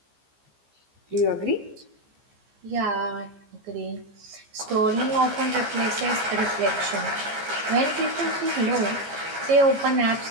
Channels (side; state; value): left; late; 15 ms